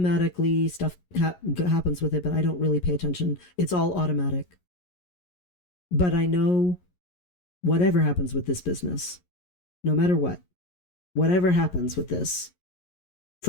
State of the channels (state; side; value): late; right; 11 ms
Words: stuff happens with it, but I don't really pay attention. It's all automatic. But I know whatever happens with this business, no matter what, whatever happens with this,